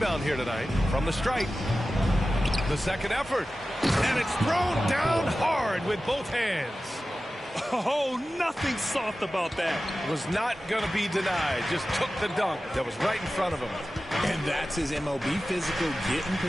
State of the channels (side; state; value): both; normal; correlation 0.95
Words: here tonight from the stripe. The second effort. And it's thrown down hard with both hands. Oh, nothing soft about that. Was not going to be denied. Just took the dunk that was right in front of him. And that's his MO. Be physical, get in